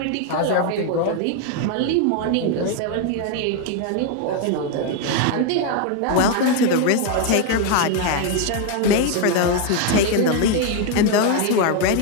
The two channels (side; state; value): both; different; correlation 0.01